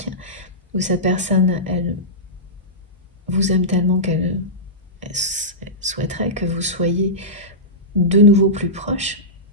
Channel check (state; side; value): normal; both; correlation -0.16